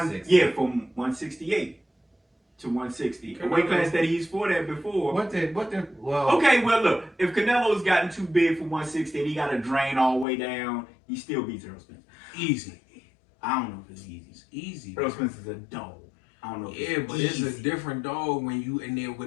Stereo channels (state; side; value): drops out; right; at 10.2 s